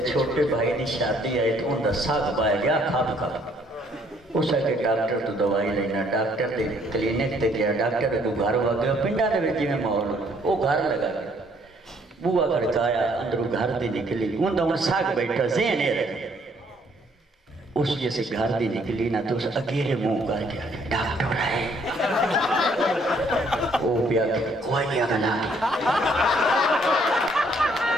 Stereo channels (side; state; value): both; normal; correlation 0.65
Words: چھوٹے بھائی نے شادی آئی تو ان دا ساگ پایا گیا کھاب کھاب اس کے ڈاکٹر تو دوائی لینا ڈاکٹر دے کلینک تے گیا ڈاکٹر کو گھر ہوا گیا پنڈا دے جی میں ماحول وہ گھر لگا گیا بوا کھڑکایا اندروں گھر دی نکلی ان دا ان ساگ بیٹھا ذہن ہے رہے اس جیسے گھر دی نکلی نا تو اس اگیرے منہ کر گیا ڈاکٹر ہے وہ پیا کوئی نہیں اگلا